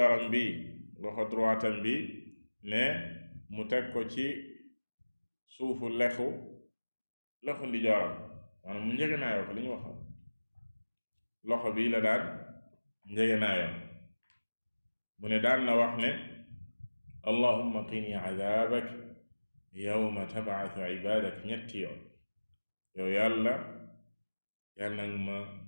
bi loxo droitam bi ne mu teg ko ci suufu loxo ndijooram maanaam mu njëgënaayoo ko li ñu wax loxo bi la daan njëgënaayoo mu ne daan na wax ne allahumma qini adaabak yawma tab'athu ibaadak ñetti yoon yow yàlla nag ma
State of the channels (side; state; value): both; inverted; correlation -1.00